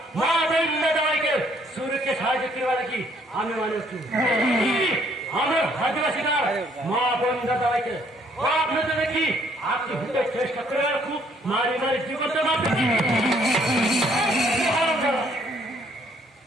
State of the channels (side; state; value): both; normal; correlation 0.65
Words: মা বন্ধ দাদাভাইকে सूर्य সাহায্য করবার কি আমি মানুষ আমার आदिवासी গান মা বন্ধ দাদাভাইকে आपने तो देखी आपकी भूले चेष्टा कर रखू मारी मारी जीवन से मार